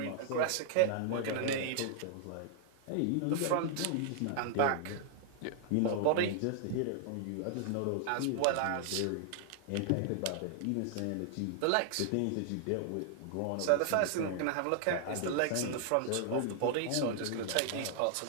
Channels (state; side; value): different; both; correlation -0.01